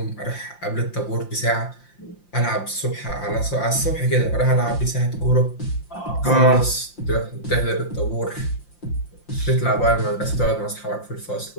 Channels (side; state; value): right; late; 5.7 ms